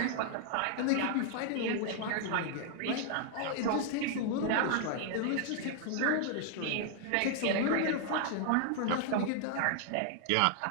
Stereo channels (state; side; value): different; both; correlation 0.00